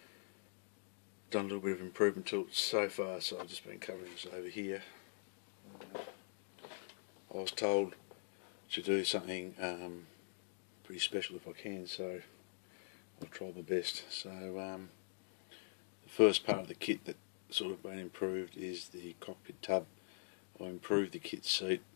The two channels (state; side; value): silent; right; digital silence